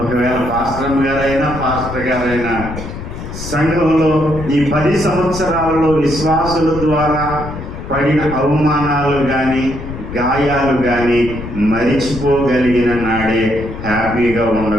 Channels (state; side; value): noise; left; rumble, 9 dB below the sound